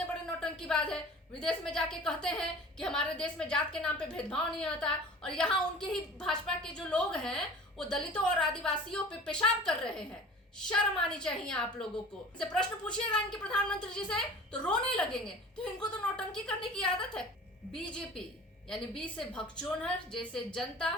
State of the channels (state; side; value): normal; both; correlation 0.41